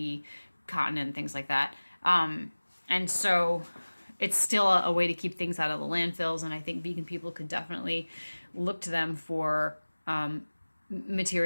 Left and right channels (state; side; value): inverted; both; correlation -1.00